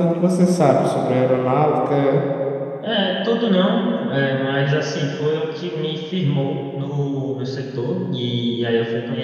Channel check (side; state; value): both; identical; correlation 1.00